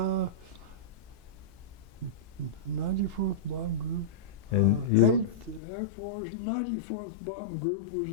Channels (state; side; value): drops out; right; at 5.6 s